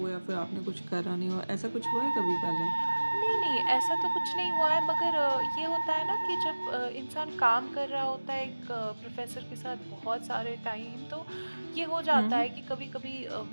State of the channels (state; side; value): inverted; both; correlation -1.00